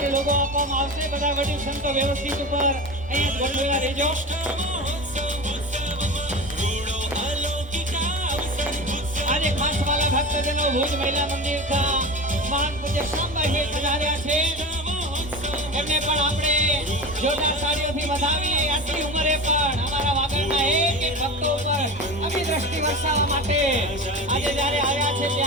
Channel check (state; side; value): normal; both; correlation 0.29